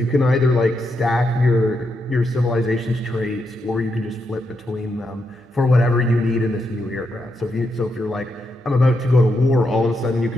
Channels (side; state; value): both; normal; correlation 0.82